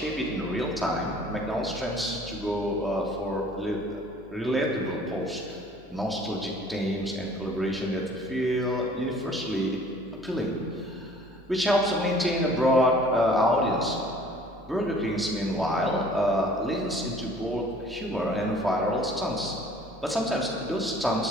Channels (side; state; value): both; normal; correlation 0.52